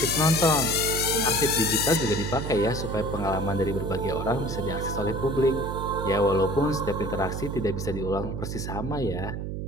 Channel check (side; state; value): right; noise; hum, 4 dB below the sound